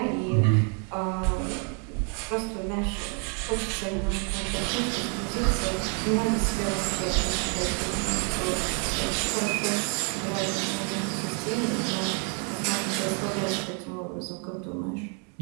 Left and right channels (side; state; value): left; quieter; 38.8 dB